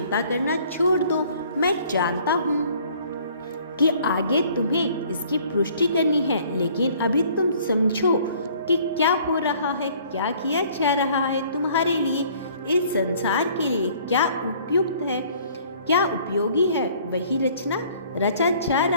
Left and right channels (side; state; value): both; inverted; correlation -0.56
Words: करना छोड़ दो। मैं जानता हूँ कि आगे तुम्हें इसकी पुष्टि करनी है, लेकिन अभी तुम समझो कि क्या हो रहा है, क्या किया जा रहा है तुम्हारे लिए, इस संसार के लिए क्या उपयुक्त है, क्या उपयोगी है, वही रचा जा